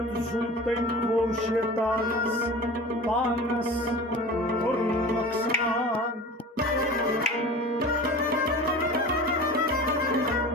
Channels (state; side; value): normal; both; correlation 0.36